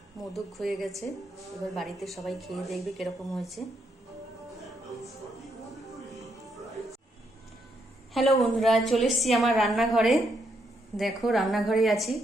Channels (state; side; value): normal; both; correlation 0.77